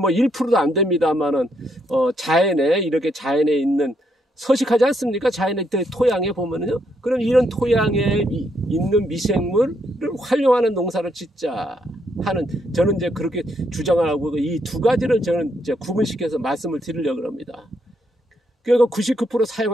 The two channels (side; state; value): both; normal; correlation 0.76